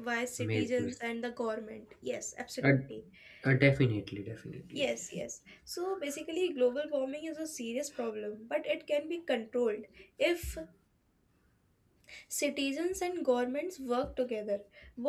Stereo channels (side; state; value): both; identical; correlation 1.00